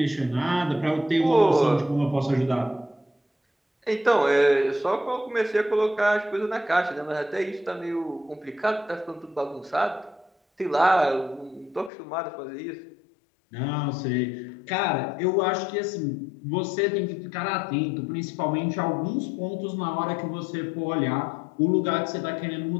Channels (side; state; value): right; drops out; at 11.9 s